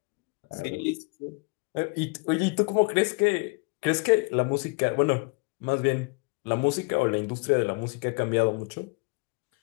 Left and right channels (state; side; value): quieter; right; 30.9 dB